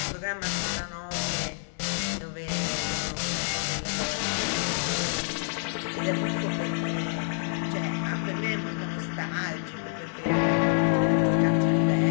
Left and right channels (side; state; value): right; silent; 60 dB below the other